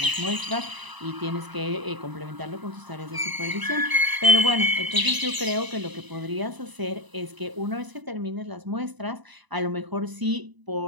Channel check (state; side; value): late; left; 1.0 ms